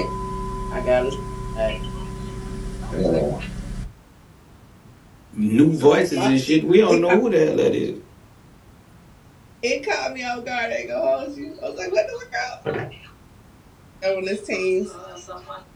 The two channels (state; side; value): identical; both; correlation 1.00